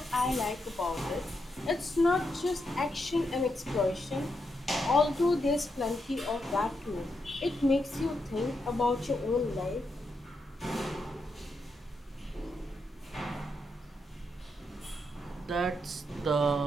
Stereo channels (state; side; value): normal; both; correlation 0.83